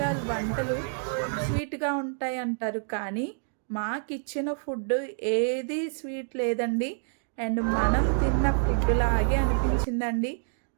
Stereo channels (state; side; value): silent; left; digital silence